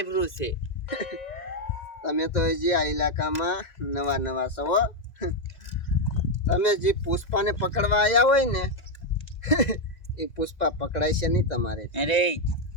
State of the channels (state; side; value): late; right; 1.9 ms